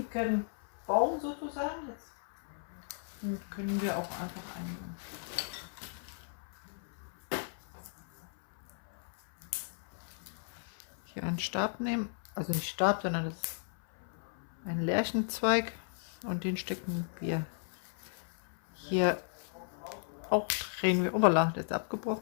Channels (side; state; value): right; silent; 54 dB below the other